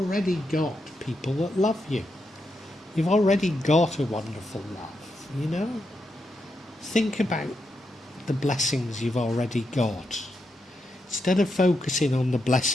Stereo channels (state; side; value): normal; both; correlation 0.84